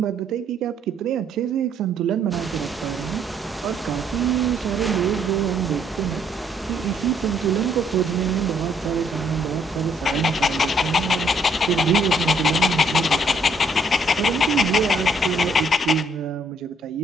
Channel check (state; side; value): normal; both; correlation 0.67